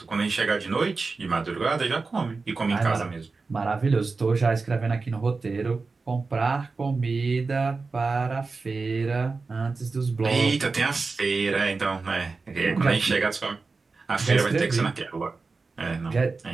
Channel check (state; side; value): quieter; left; 4.1 dB